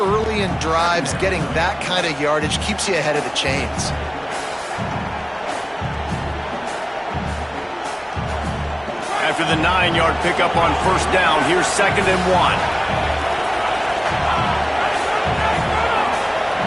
in drives, getting that kind of yardage keeps you ahead of the chains. After the 9-yard pickup on 1st down, here's 2nd and 1.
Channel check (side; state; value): both; identical; correlation 1.00